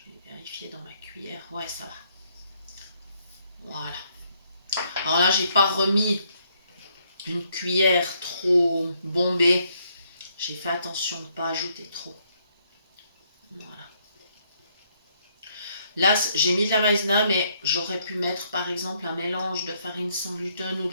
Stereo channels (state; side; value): inverted; both; correlation -0.71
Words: vais vérifier dans ma cuillère. Ouais, ça va. Voilà. Alors là, j'ai pas remis une cuillère trop bombée. J'ai fait attention de ne pas ajouter trop. Voilà. Là, j'ai mis de la maïzena, mais j'aurais pu mettre par exemple un mélange de farine sans gluten ou